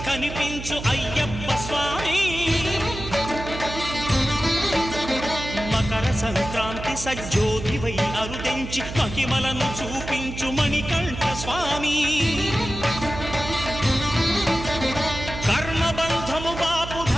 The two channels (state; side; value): noise; right; hum, 9 dB below the sound